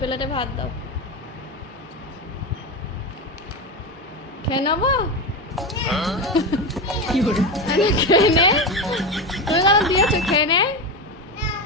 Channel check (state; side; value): normal; both; correlation 0.18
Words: ভাত দাও। খেয়ে নেবো? খেয়ে নে। তুমি কেন দিয়েছো? খেয়ে নে,